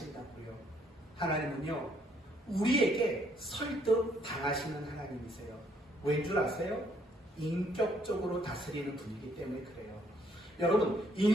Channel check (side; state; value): both; normal; correlation 0.67